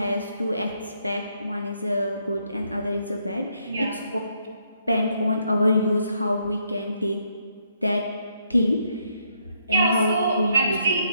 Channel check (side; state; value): both; inverted; correlation -0.74